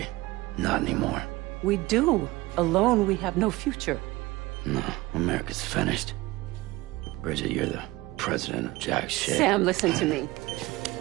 Not anymore. We do. Alone, we have no future. No, America's finished. Bridget, you're the president of jack shit. Sam, listen to me.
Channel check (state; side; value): quieter; left; 20.0 dB